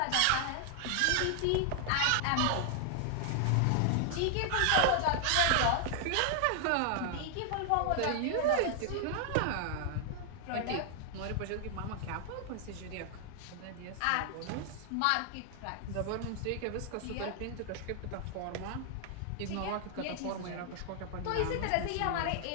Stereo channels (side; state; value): both; different; correlation 0.00